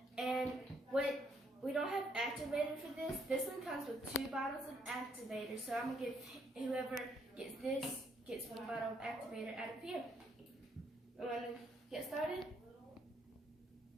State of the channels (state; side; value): normal; both; correlation 0.71